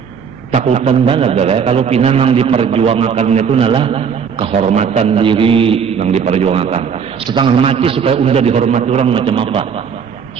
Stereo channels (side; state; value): left; quieter; 6.8 dB